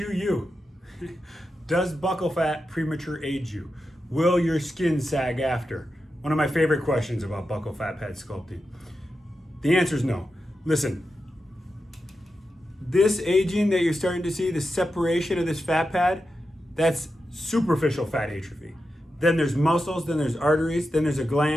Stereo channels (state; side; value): normal; both; correlation 0.89